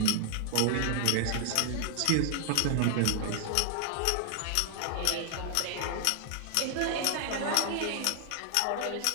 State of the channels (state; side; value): different; both; correlation 0.00